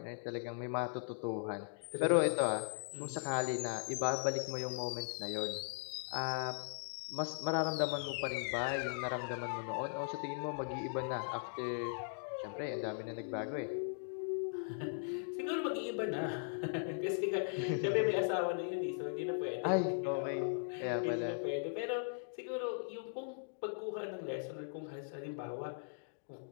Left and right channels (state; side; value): silent; right; digital silence